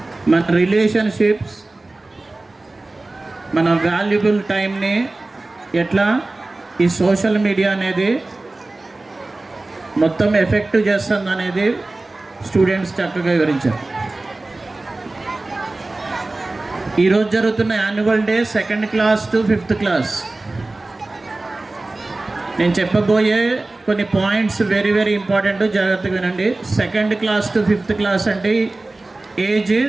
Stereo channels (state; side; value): quieter; left; 3.0 dB